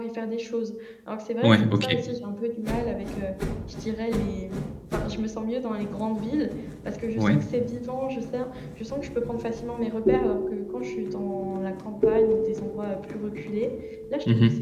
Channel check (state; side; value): identical; both; correlation 1.00